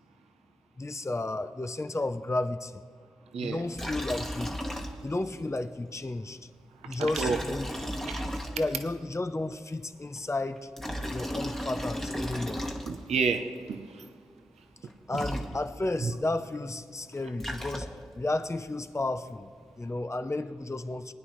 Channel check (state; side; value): normal; both; correlation 0.86